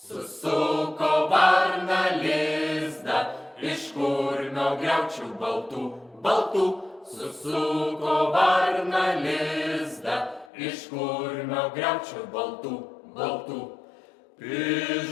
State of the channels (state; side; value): drops out; right; at 10.5 s